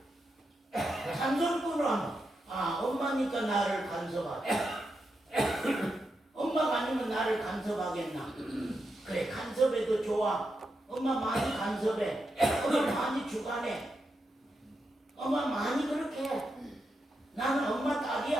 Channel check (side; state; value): both; normal; correlation 0.85